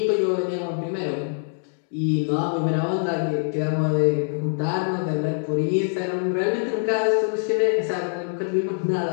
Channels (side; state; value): right; silent; digital silence